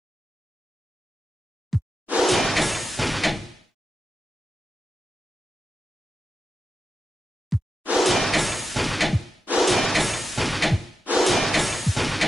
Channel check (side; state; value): both; normal; correlation 0.90